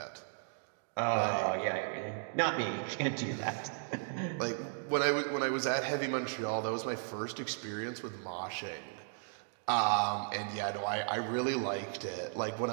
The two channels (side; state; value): left; silent; digital silence